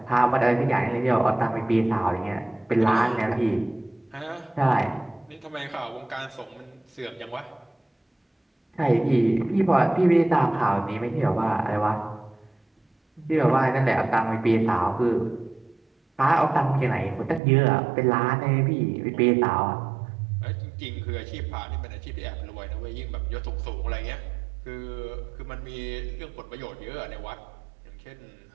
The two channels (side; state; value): left; drops out; at 17.4 s